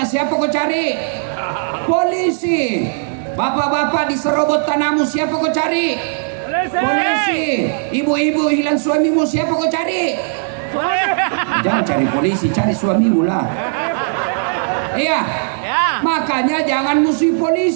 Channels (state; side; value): silent; left; 63 dB below the other